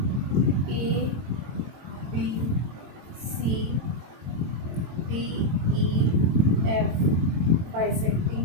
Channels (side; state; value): left; late; 23 ms